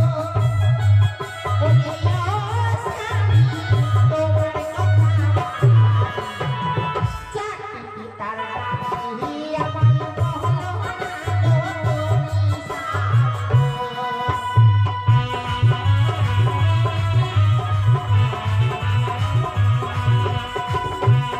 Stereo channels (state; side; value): identical; both; correlation 1.00